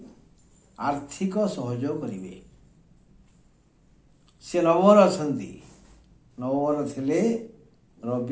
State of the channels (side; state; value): both; identical; correlation 1.00